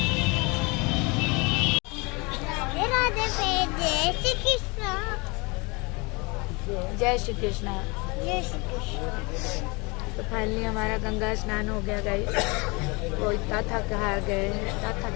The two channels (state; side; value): quieter; right; 28.2 dB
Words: जय श्री कृष्णा। जय श्री कृष्ण। तो फाइनली हमारा गंगा स्नान हो गया गाइस। वो इतना थका गए हैं, इतना